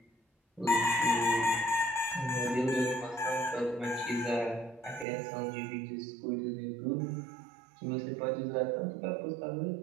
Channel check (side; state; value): left; drops out; at 5.1 s